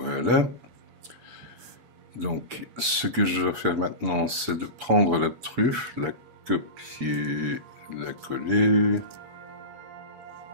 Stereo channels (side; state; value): left; late; 8.4 ms